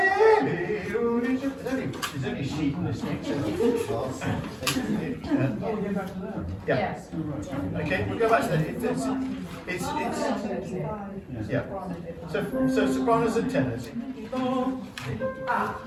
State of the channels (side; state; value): both; identical; correlation 1.00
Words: only a sheet in this thing. Yeah. Yes. Okay, we'll go back to that. Yeah. So sopranos and tenors.